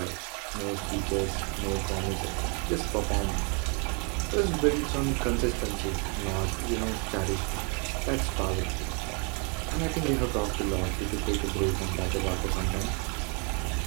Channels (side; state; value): left; quieter; 35.5 dB